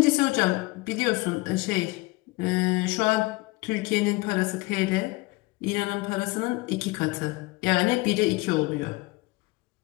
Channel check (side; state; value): right; quieter; 23.2 dB